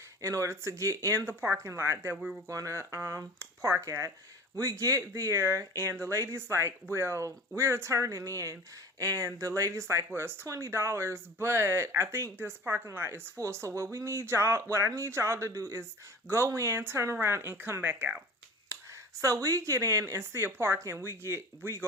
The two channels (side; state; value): both; normal; correlation 0.39